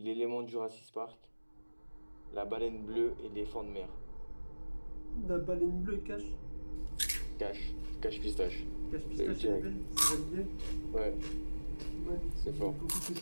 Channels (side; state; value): both; inverted; correlation -1.00